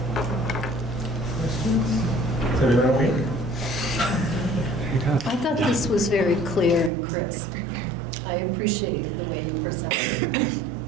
Is everyone okay? I thought this was very clear and crisp. I appreciate the way you presented.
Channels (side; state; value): left; drops out; at 6.9 s